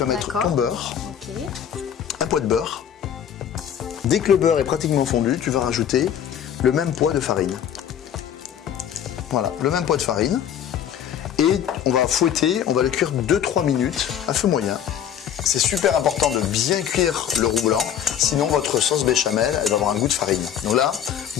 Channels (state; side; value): quieter; right; 9.3 dB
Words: vas mettre ton beurre, un poids de beurre. Dès que le beurre est pratiquement fondu, tu vas rajouter le même poids de farine. Voilà, le même poids de farine. Et on va fouetter, on va le cuire 2-3 minutes à feu moyen. C'est super important de bien cuire le roux blanc, sinon votre sauce béchamel, elle va avoir un goût de farine. Donc là,